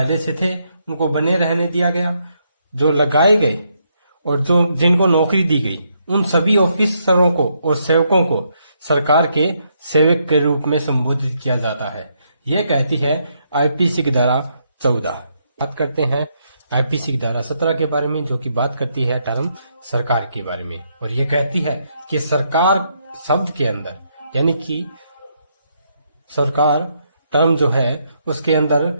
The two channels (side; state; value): both; inverted; correlation -0.76